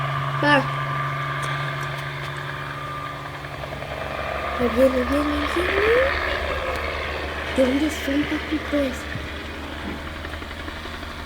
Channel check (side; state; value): both; identical; correlation 1.00